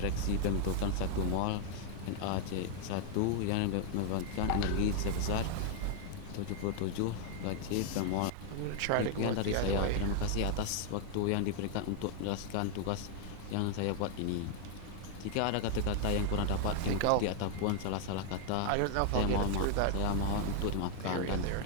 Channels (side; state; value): both; different; correlation 0.00